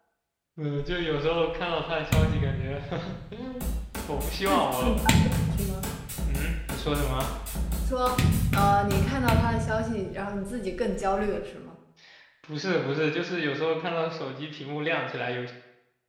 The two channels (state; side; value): identical; both; correlation 1.00